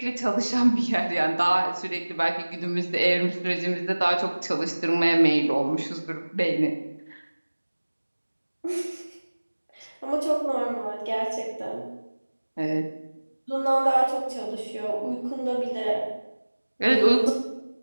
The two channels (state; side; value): inverted; both; correlation -1.00